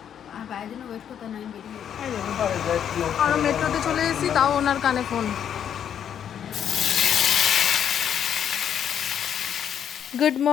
আর বাইরের জন্য ওয়েট করতে না, আমি বেরিয়ে গেছি। আমরা মেট্রোতে চলে এসেছি, তাও ওনার কানে ফোন। গুড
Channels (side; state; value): right; quieter; 9.0 dB